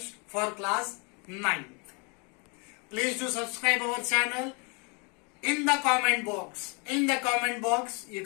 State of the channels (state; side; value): quieter; right; 32.8 dB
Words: for class 9th. Please do subscribe our channel. In the comment box, you